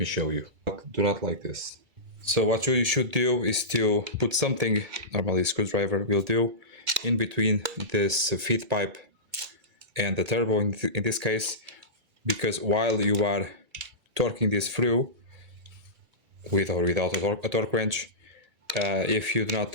show you. Do not like this. So what you should do is to put something, normally a screwdriver will do, in between this feed pipe and the turbo in this case, because while you are torquing this through, with or without a torque wrench, if you do not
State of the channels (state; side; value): late; left; 2.3 ms